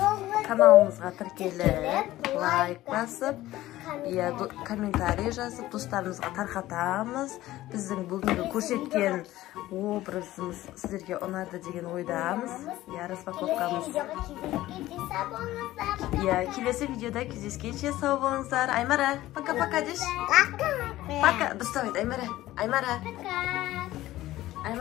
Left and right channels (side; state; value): right; quieter; 15.8 dB